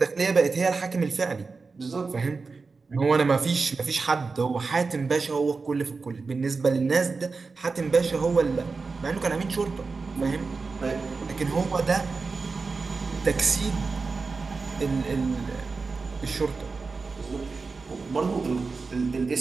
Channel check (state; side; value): quieter; left; 4.3 dB